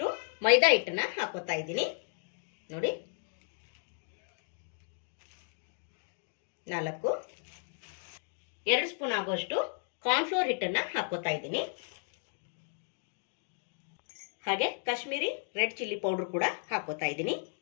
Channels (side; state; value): right; silent; 55 dB below the other